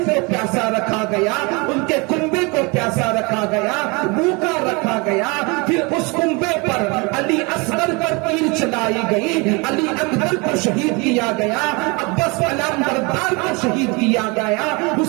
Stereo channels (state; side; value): quieter; left; 28.3 dB